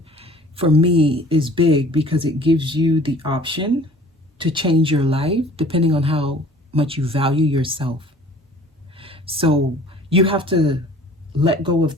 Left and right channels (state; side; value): normal; both; correlation 0.49